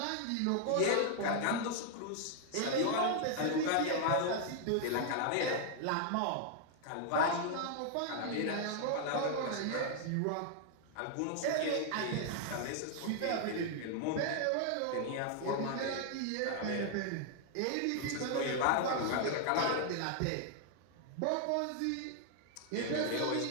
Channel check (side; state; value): both; different; correlation 0.00